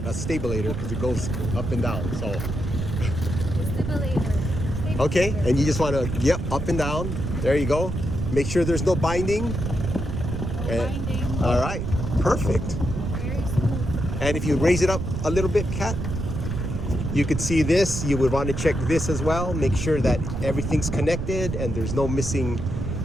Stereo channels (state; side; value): noise; right; rumble, 3 dB below the sound